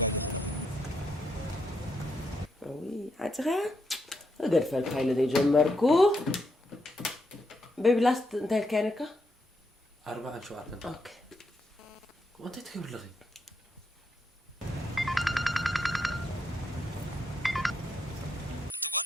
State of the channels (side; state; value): both; normal; correlation 0.79